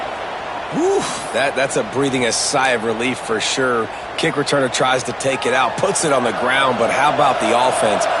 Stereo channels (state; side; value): identical; both; correlation 1.00